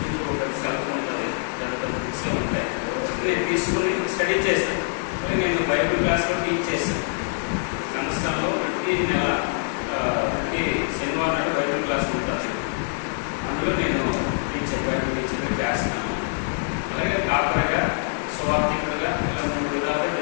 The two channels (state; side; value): silent; right; 62 dB below the other